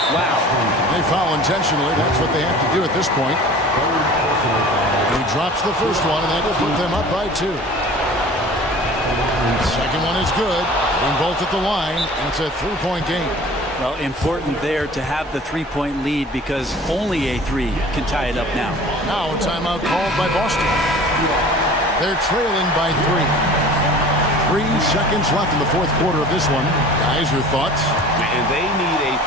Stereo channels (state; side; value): normal; both; correlation 0.44